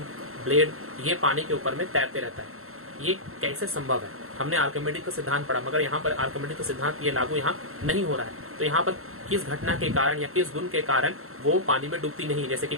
ब्लेड, ये पानी के ऊपर में तैरते रहता है। ये कैसे संभव है? हमने आर्किमिडीज का सिद्धांत पढ़ा, मगर यहाँ पर आर्किमिडीज का सिद्धांत ये लागू यहाँ नहीं हो रहा है। तो यहाँ पर किस घटना के कारण या किस गुण के कारण वो पानी में डूबती नहीं, जैसे कि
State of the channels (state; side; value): late; left; 0.62 ms